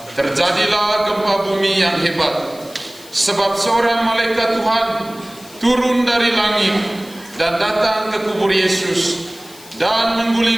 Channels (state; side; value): noise; left; hiss, 21 dB below the sound